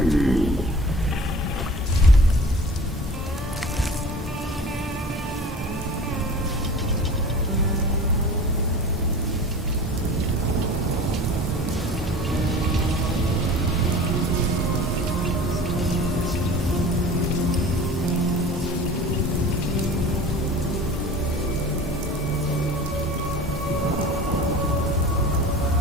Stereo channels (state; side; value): normal; both; correlation 0.40